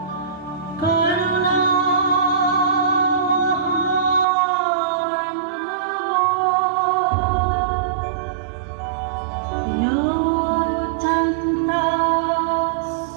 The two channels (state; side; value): drops out; left; at 4.2 s